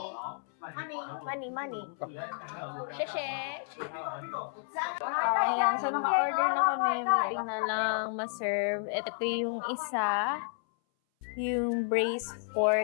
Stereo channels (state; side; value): silent; right; 57 dB below the other